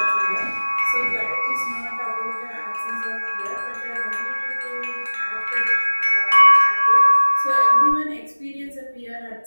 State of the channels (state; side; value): inverted; both; correlation -1.00